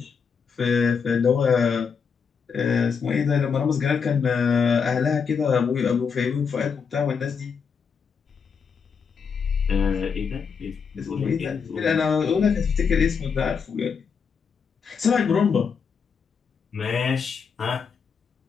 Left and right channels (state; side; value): quieter; right; 6.1 dB